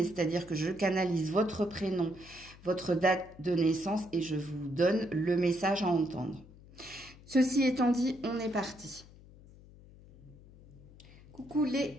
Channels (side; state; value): left; noise; hum, 21 dB below the sound